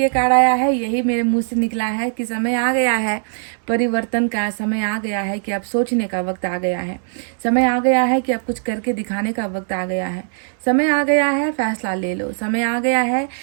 ये कार्ड आया है यही मेरे मुंह से निकला है कि समय आ गया है परिवर्तन का, समय आ गया है कि अब सोचने का वक्त आ गया है, समय आ गया है कि अब कुछ करके दिखाने का वक्त आ गया है, समय आ गया है फैसला ले लो, समय आ गया है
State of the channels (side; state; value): left; silent; 66 dB below the other